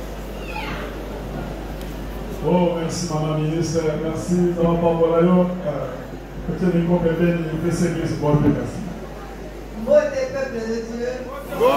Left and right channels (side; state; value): both; identical; correlation 1.00